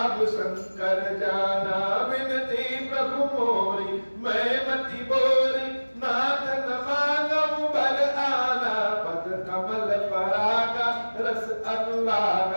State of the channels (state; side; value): inverted; both; correlation -1.00